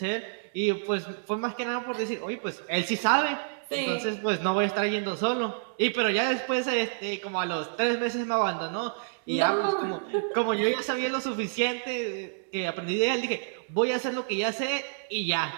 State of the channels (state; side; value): silent; left; 59 dB below the other